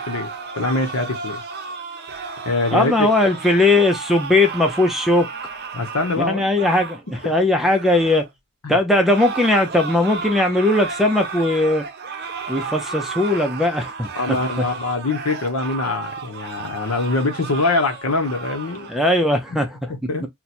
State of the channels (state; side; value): normal; both; correlation 0.43